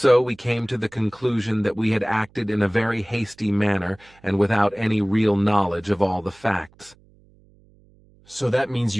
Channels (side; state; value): right; noise; hum, 29 dB below the sound